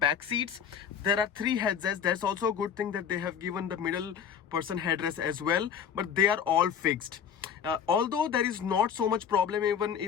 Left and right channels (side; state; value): right; quieter; 7.8 dB